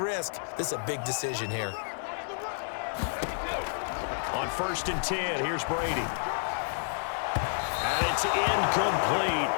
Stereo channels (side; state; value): right; silent; 58 dB below the other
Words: this is a big decision here. On 1st and 10, here's Brady. And it's incomplete.